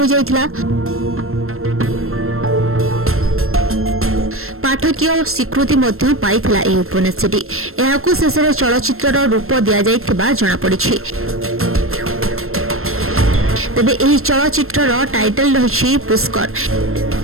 जाइथिला। पाठकीय स्वीकृति मध्य पाइथिला एही उपन्यासटी। एहाकु शेषर चलचित्रर रूप दिया जाइथिबा जणा पड़िछि। तबे एही चलचित्रर टाइटल रहिछि पुष्कर।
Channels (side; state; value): left; late; 0.62 ms